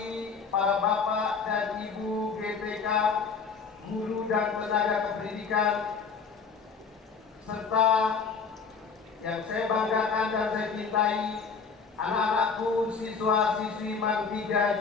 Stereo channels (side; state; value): right; quieter; 5.5 dB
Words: para Bapak dan Ibu GTK, guru dan tenaga kependidikan, serta yang saya banggakan dan saya cintai, anak-anakku siswa-siswi Bank 3